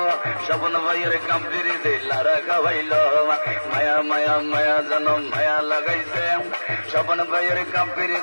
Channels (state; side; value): inverted; both; correlation -1.00